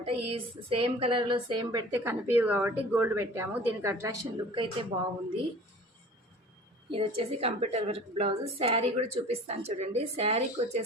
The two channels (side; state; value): both; normal; correlation 0.44